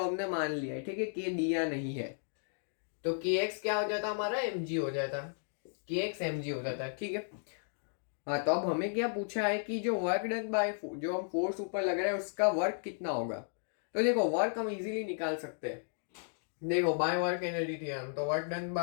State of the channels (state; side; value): silent; right; digital silence